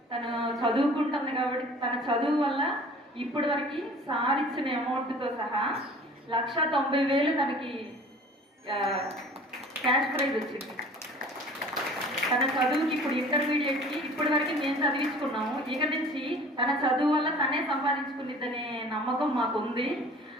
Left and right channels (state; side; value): normal; both; correlation 0.46